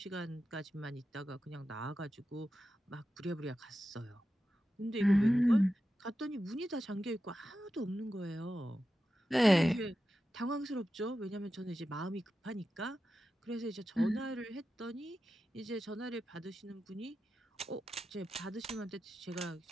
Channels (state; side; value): normal; both; correlation 0.91